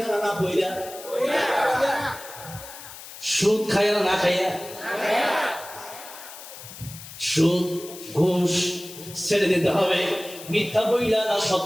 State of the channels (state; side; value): noise; left; hiss, 14 dB below the sound